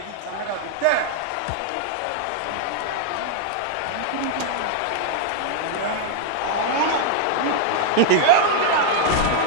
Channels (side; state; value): both; different; correlation 0.00